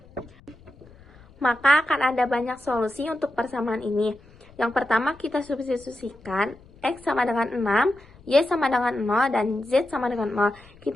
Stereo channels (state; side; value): noise; left; rumble, 25 dB below the sound